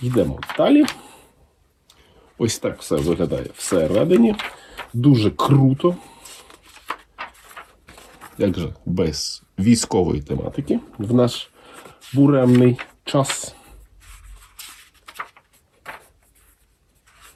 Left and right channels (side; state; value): both; identical; correlation 1.00